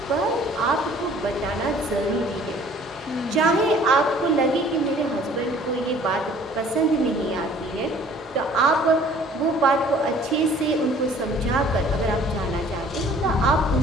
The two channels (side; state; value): both; normal; correlation 0.53